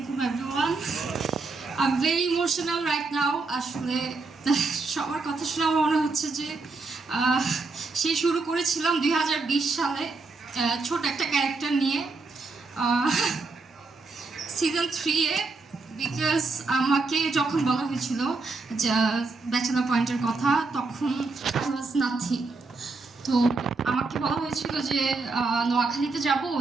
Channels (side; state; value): left; quieter; 3.8 dB